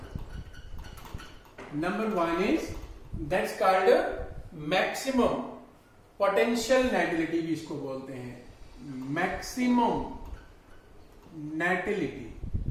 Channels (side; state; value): both; identical; correlation 1.00